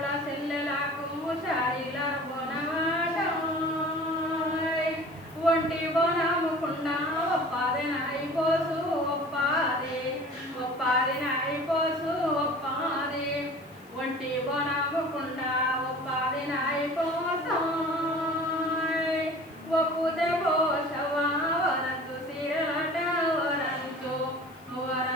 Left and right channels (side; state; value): left; noise; hiss, 28 dB below the sound